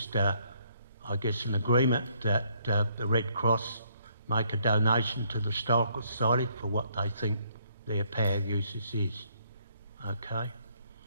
I guess, an agreement that the Red Cross make a donation to the Historical Society for what they think their power usage is. Okay.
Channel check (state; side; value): inverted; both; correlation -0.69